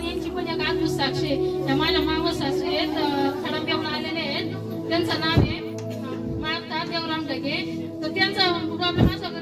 यांची पण एक अद्भुत साक्ष आहे. त्या माझ्या मावस सासू आहेत, खडमदेवला आलेले आहेत. त्यांचं नाव आहे माता देवराम ढगे. तर त्यांचा प्रॉब्लेम असा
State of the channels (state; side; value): identical; both; correlation 1.00